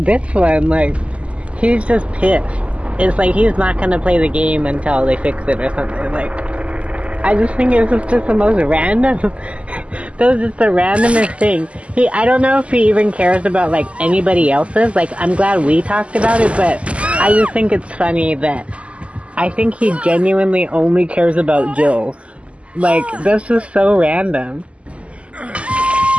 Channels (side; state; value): left; late; 0.060 ms